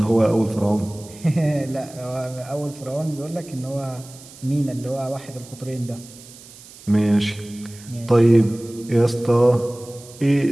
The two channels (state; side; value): noise; right; hiss, 20 dB below the sound